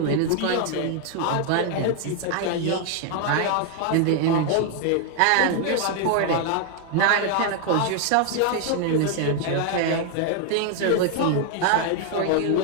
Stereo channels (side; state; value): both; different; correlation 0.00